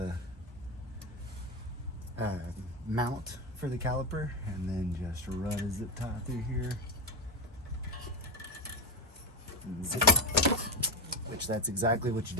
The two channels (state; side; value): normal; both; correlation 0.14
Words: mount for the caliper, and then just run a zip tie through here. And zip, which that's exactly what you